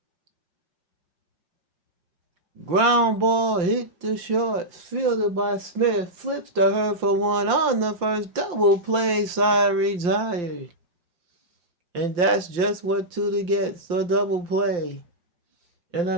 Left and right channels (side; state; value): left; late; 5.7 ms